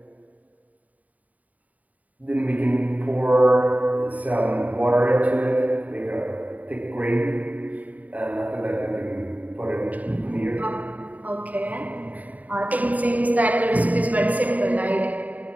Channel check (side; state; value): left; late; 0.074 ms